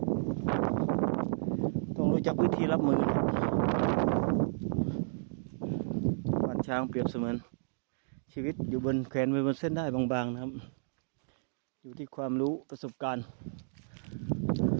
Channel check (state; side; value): silent; left; digital silence